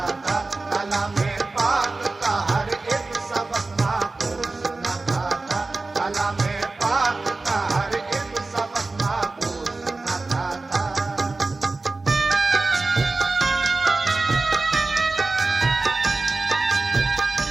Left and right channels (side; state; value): left; quieter; 3.4 dB